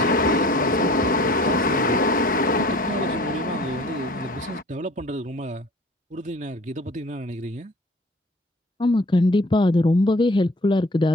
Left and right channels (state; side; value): normal; both; correlation 0.49